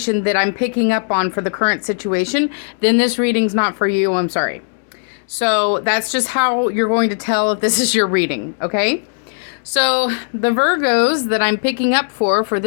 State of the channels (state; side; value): silent; right; digital silence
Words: that I'm picking up on for the current situation, then this reading's not for you. I'm sorry. So that's just how you're going to tell if this is your reading, okay? So the Virgos that I'm picking up for